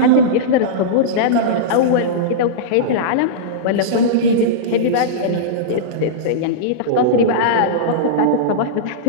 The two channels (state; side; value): different; both; correlation -0.05